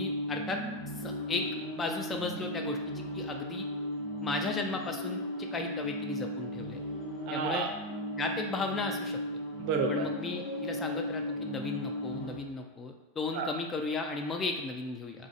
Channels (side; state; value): both; normal; correlation 0.06